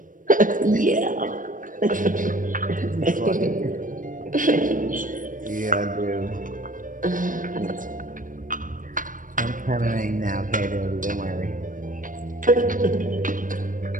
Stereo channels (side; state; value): left; late; 0.39 ms